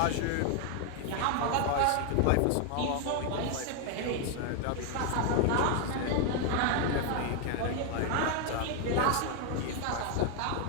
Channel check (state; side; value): different; both; correlation 0.00